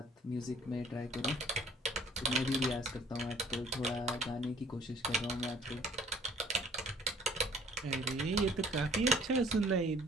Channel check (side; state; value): both; normal; correlation 0.56